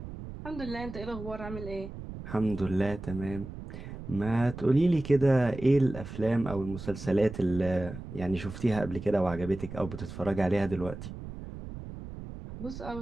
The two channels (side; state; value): right; noise; rumble, 11 dB below the sound